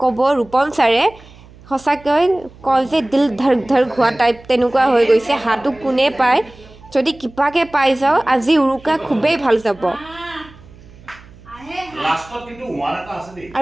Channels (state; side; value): noise; right; hum, 23 dB below the sound